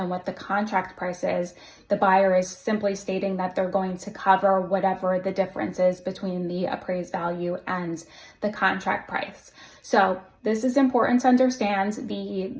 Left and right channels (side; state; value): both; identical; correlation 1.00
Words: what the contract price is, the buyer is simply stating that they're going to cover whatever the difference is between the appraised value and the contract price. So this is important to understand.